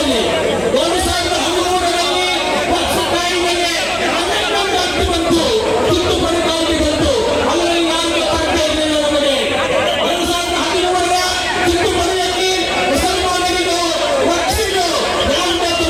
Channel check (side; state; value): right; noise; hum, 17 dB below the sound